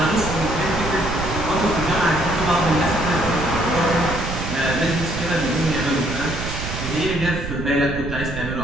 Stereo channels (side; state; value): right; noise; rumble, 6 dB below the sound